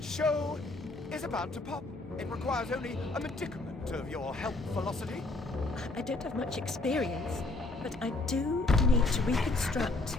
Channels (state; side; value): quieter; right; 3.1 dB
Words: show is about to pop. It requires only a medicament of your health velocity. I don't have much experience, but I do need to reconstruct